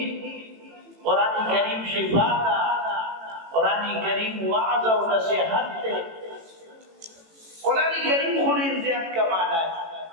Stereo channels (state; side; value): late; left; 18 ms